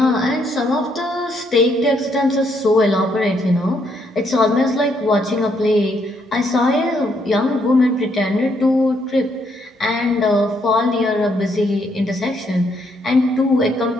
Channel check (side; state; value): both; normal; correlation 0.73